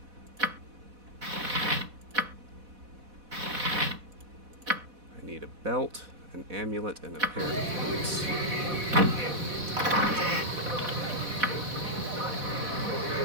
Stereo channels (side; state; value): left; late; 4.1 ms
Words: I need a belt, an amulet, and a pair of boots.